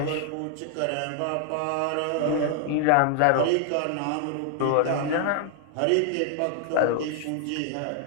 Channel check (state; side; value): different; both; correlation 0.00